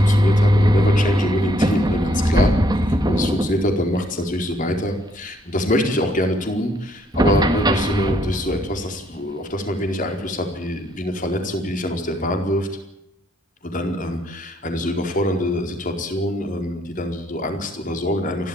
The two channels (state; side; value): normal; both; correlation 0.68